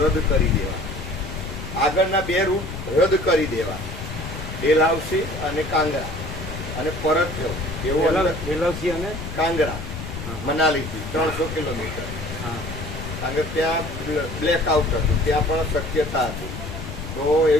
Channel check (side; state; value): left; noise; rumble, 8 dB below the sound